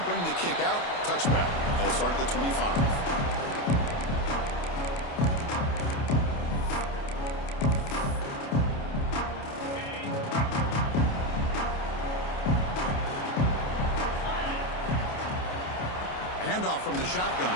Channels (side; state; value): right; late; 29 ms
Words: bring the kick out. Touchback. They'll start at the 25. Handoff from the